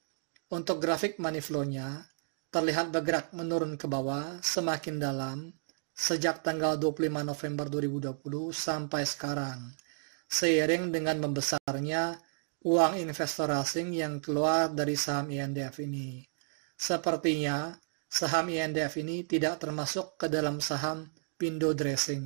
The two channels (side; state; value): left; silent; digital silence